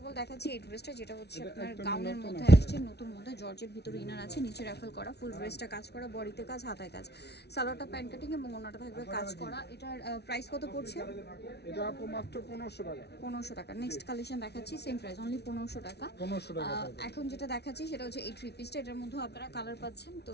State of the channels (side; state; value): right; late; 0.49 ms